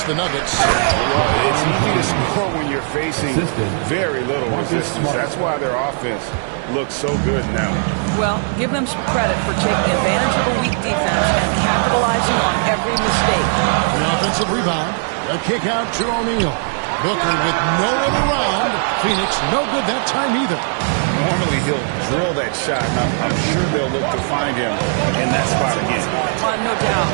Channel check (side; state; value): left; silent; 64 dB below the other